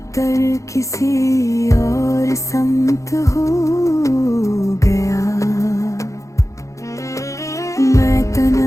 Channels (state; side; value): late; right; 0.15 ms